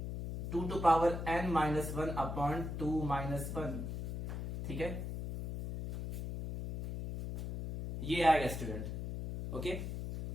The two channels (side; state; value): left; noise; hum, 4 dB below the sound